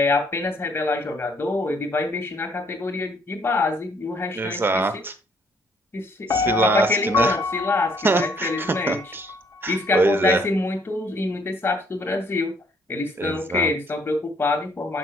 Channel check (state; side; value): normal; both; correlation 0.65